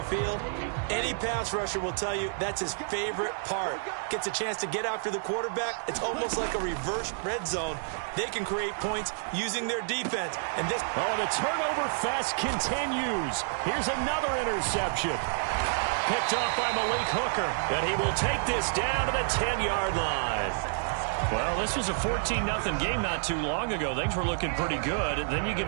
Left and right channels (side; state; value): left; silent; digital silence